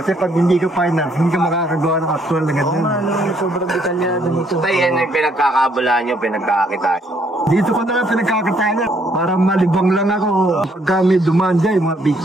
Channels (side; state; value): both; normal; correlation 0.68